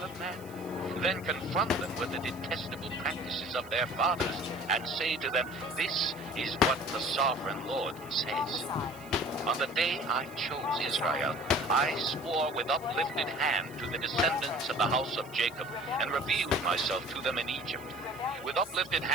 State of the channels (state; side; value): noise; left; hiss, 21 dB below the sound